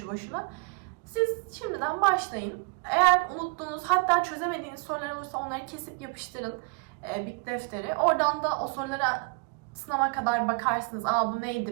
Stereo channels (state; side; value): quieter; left; 32.8 dB